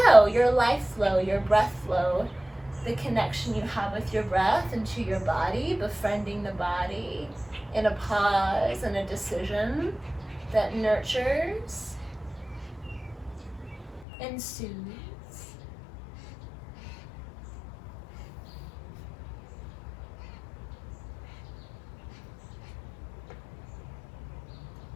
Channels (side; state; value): right; drops out; at 14.1 s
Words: your life flow, your breath flow, the connection you have with your breath into your body, befriending the body in a pause and a decision that nurtures and soothes.